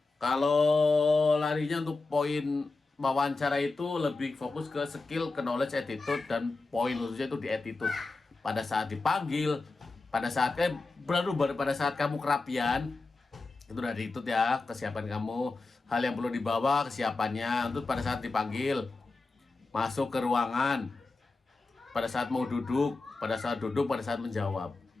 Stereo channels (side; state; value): right; quieter; 3.6 dB